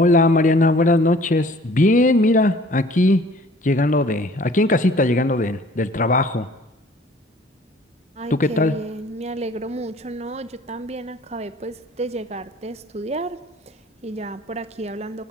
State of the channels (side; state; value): both; normal; correlation 0.53